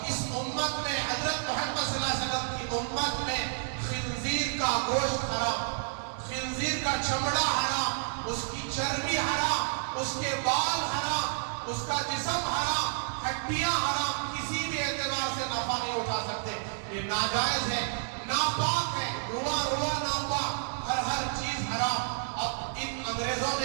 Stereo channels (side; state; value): left; silent; digital silence